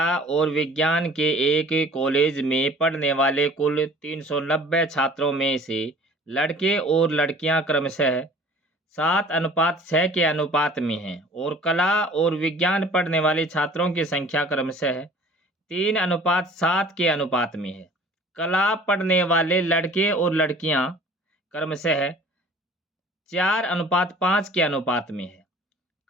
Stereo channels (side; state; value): both; normal; correlation 0.49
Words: और विज्ञान के एक कॉलेज में पढ़ने वाले कुल 390 छात्रों में से लड़के और लड़कियां क्रमशः 7:6 के अनुपात में हैं और कला और विज्ञान पढ़ने वाले छात्रों की संख्या क्रमशः 3:7 के अनुपात में है। कला पढ़ने वाले लड़के और लड़कियां क्रमशः 4:5 के अनुपात में है।